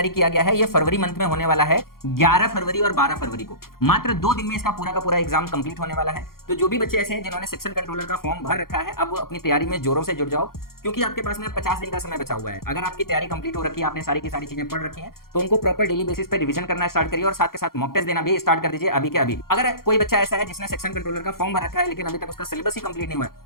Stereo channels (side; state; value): right; late; 0.92 ms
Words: किया गया है ये फरवरी मंथ में होने वाला है, 11 फरवरी और 12 फरवरी को। मात्र 2 दिन में इसका पूरा का पूरा एग्जाम कंप्लीट होने वाला है। तो जो भी बच्चे ऐसे हैं जिन्होंने सेक्शन कंट्रोलर का फॉर्म भर रखा है, अब वो अपनी तैयारी में जोरों से जुड़ जाओ, क्योंकि आपके पास में 50 दिन का समय बचा हुआ है। अगर आपकी तैयारी कंप्लीट हो रखी है, आपने सारी की सारी चीजें पढ़ रखी हैं, तो उनको प्रॉपर डेली बेसिस पे रिवीजन करना स्टार्ट करिए और साथ के साथ मॉक टेस्ट देना भी स्टार्ट कर दीजिए अभी के अभी। अगर कोई बच्चा ऐसा है जिसने सेक्शन कंट्रोलर का फॉर्म भर रखा है लेकिन अभी तक उसका सिलेबस ही कंप्लीट नहीं हुआ है,